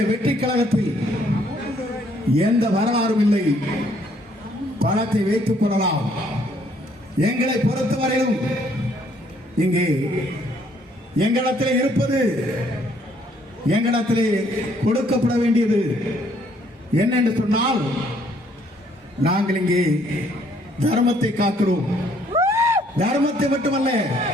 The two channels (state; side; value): normal; both; correlation 0.66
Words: வெற்றி கழகத்தில் எந்த வரலாறும் இல்லை. படத்தை வைத்துக் கொள்ளலாம். எங்களை பொறுத்தவரையிலும் இங்கே எங்களிடத்தில் இருப்பது, எங்களிடத்திலே கொடுக்கப்பட வேண்டியது என்ன என்று சொன்னால், நாங்கள் இங்கே தர்மத்தை காக்கிறோம். தர்மத்தை மட்டுமல்ல,